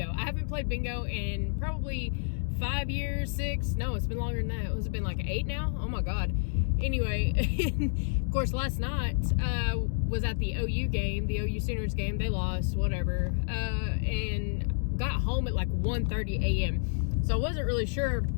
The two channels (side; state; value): right; silent; digital silence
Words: I haven't played bingo in probably 5 years, 6. No, it's been longer than that. It's been like 8 now. Oh my God. Anyway, of course, last night was at the OU game, the OU Sooners game. They lost, whatever, and got home at like 1:30 a.m. So I wasn't really sure